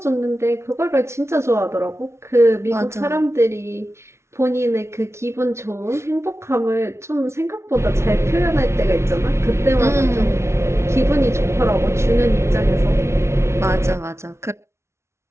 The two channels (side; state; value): left; late; 0.13 ms